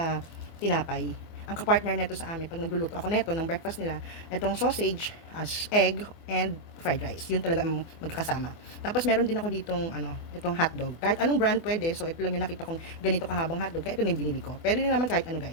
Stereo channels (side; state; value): right; late; 24 ms